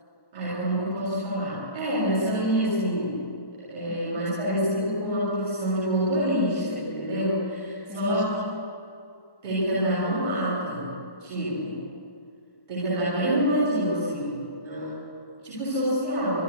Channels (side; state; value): right; late; 1.1 ms